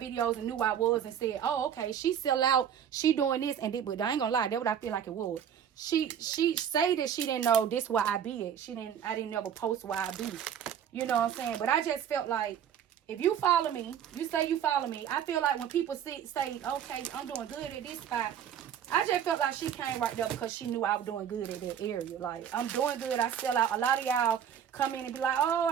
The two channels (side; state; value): left; quieter; 8.9 dB